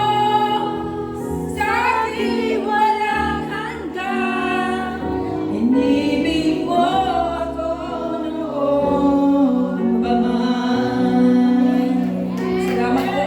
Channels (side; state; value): both; identical; correlation 1.00